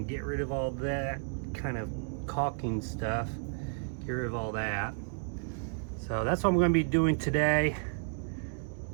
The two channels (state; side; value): silent; left; 56 dB below the other